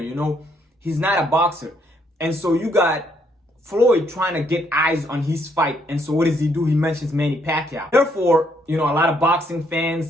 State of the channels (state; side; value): normal; both; correlation 0.71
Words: he's not a boxer. And so you got Floyd trying to get eyes on his fight. And so what does he do? He mentions Manny Pacquiao. Therefore, a lot of boxing